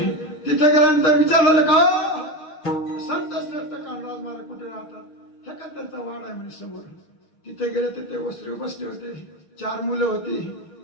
तिथे गेल्यानंतर विचारलं का संत श्रेष्ठ कांडराज महाराज कुठे राहतात. हे का त्यांचा वाड आहे म्हणजे समोर. तिथे गेले तर ते वस्त्र बसले होते. 4 मुलं होती.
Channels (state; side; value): late; right; 6.4 ms